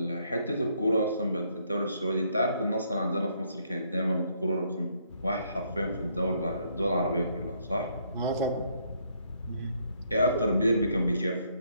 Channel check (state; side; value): inverted; both; correlation -0.70